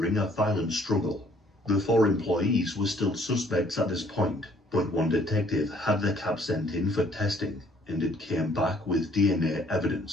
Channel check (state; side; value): normal; both; correlation 0.61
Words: a violent struggle. The 4 employees were still suspects at this point, but one detective had the cap sent in for testing, and it came back with DNA